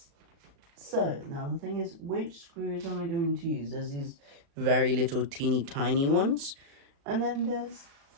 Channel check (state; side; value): late; left; 36 ms